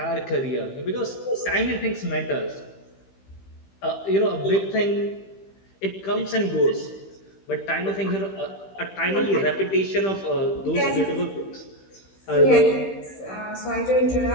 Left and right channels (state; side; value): late; right; 15 ms